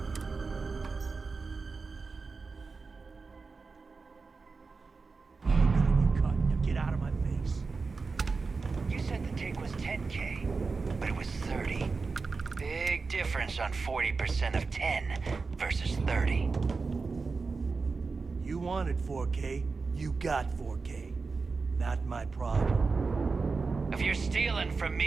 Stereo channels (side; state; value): left; quieter; 4.4 dB